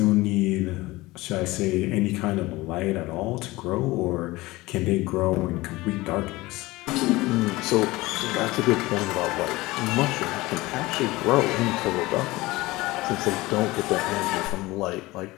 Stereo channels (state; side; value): quieter; right; 20.2 dB